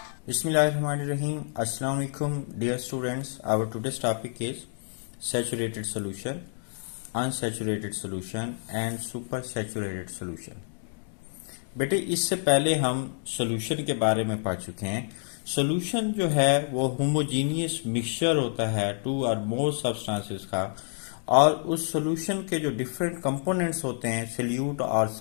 Bismillahirrahmanirrahim. Assalamu alaikum, dear students. Our today's topic is saturated solution, unsaturated solution and supersaturated solution. बेटे इससे पहले हम solution के बारे में पढ़ चुके हैं। सॉल्यूशन जो है वो होमोजीनियस मिक्सचर होता है टू और मोर सब्सटेंसेस का, और उस सॉल्यूशन के जो डिफरेंट कंपोनेंट्स होते हैं, सॉल्यूट और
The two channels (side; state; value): right; silent; 59 dB below the other